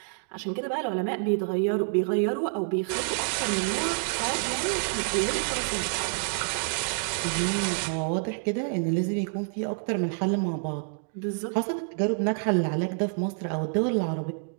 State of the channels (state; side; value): silent; left; 59 dB below the other